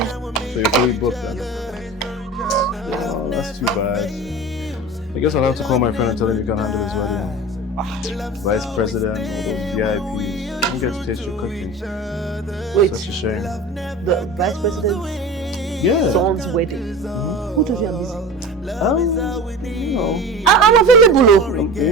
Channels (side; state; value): both; normal; correlation 0.33